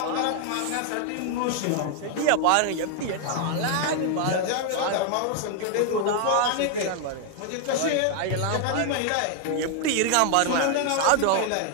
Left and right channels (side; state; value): both; different; correlation 0.00